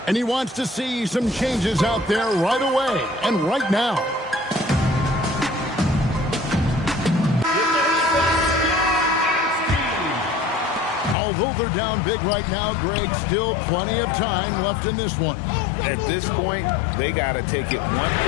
And he wants to see some changes out there right away and right now. Although they're down big right now, Greg, still plenty of time left in this one. At this point, they got to take it one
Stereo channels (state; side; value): drops out; right; at 11.2 s